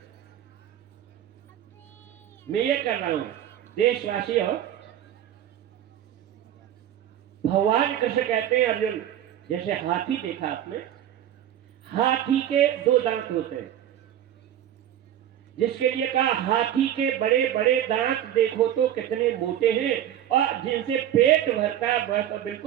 मैं ये कर रहा हूं, देशवासी हो। भगवान कृष्ण कहते हैं अर्जुन, जैसे हाथी देखा आपने, हाथी के दो दांत होते हैं, जिसके लिए कहा हाथी के बड़े बड़े दांत देखो तो कितने मोटे हैं और जिनसे पेट भरता है वह तो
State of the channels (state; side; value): quieter; left; 11.1 dB